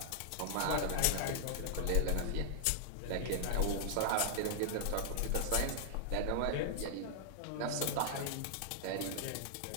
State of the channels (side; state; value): both; different; correlation -0.01